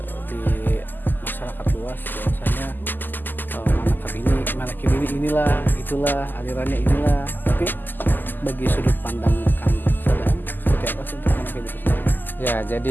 di masyarakat luas bahwasanya manakib ini inilah, itulah alirannya inilah. Tapi bagi sudut pandang Kang Sadam, seperti apa sih untuk manakib itu sendiri? Ya,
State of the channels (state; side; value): late; right; 0.089 ms